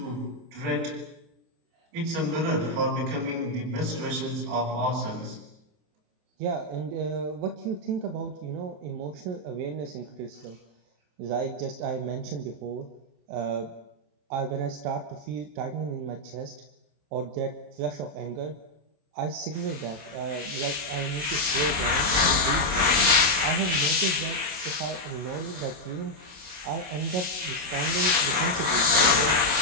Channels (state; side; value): late; left; 27 ms